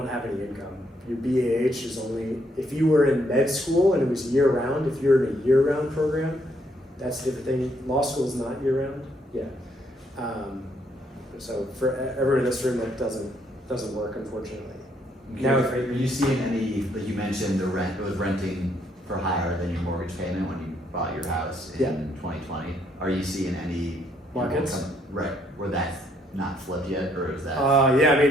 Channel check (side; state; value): both; normal; correlation 0.71